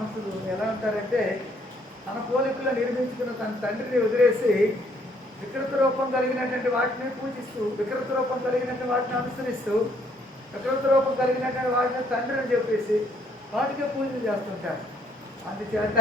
ఎలా ఉంటారంటే, తన పోలికలో నిర్మించుకున్న తన తండ్రిని వదిలేసి వికృత రూపం కలిగినటువంటి వాటిని పూజిస్తూ, వికృత రూపం కలిగినటువంటి వాటిని అనుసరిస్తూ, వికృత రూపం కలిగినటువంటి వాటిని తండ్రిని చెప్పేసి వాటికే పూజలు చేస్తుంటారు. అందుచేత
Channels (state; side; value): normal; both; correlation 0.68